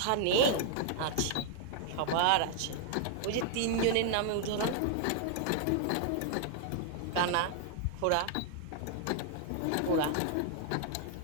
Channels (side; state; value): both; different; correlation 0.00